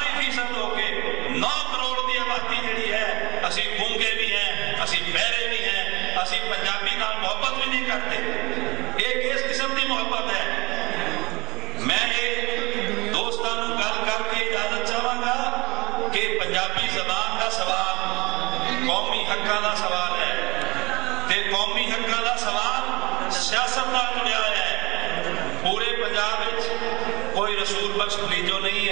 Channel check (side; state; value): left; quieter; 23.1 dB